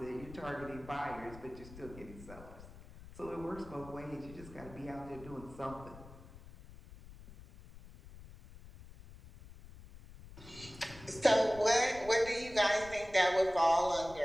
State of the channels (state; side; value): noise; left; rumble, 17 dB below the sound